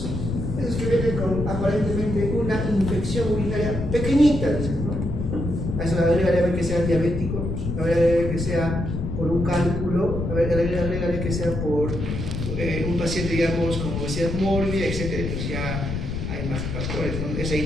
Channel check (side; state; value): left; noise; rumble, 4 dB below the sound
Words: que vienen con aparentemente una infección urinaria pequeñita, dicen, ¿no? A eso agregarle que sea diabético, agregarle que sea por un cálculo, agregarle que sea por un paciente, digamos, con obesidad mórbida, etc. Pues ya hay más factores, ¿no? Esa